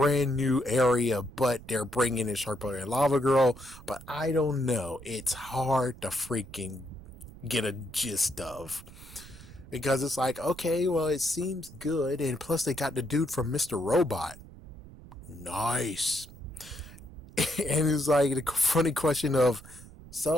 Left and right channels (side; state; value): right; noise; rumble, 18 dB below the sound